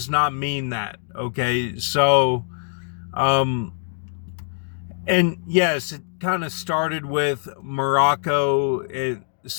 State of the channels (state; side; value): silent; right; digital silence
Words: not mean that. Okay, so and yes, it kind of started with Morocco.